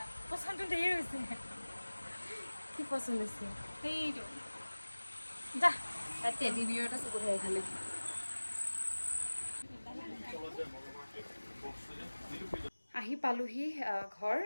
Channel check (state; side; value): inverted; both; correlation -1.00